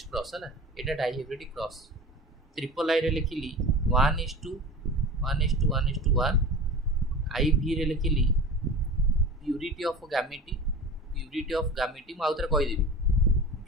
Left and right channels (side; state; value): both; normal; correlation 0.34